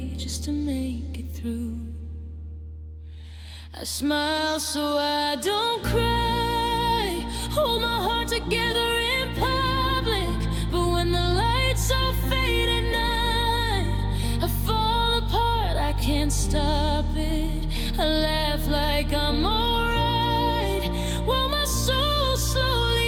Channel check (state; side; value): identical; both; correlation 1.00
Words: just to make it through. I smile so I don't cry, hold my heart together in public, but when the lights all fade at night, I fall apart, I can't stop it. I laugh like I'm alright, while my soul